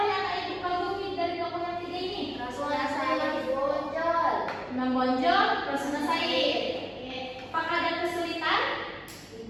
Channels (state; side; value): identical; both; correlation 1.00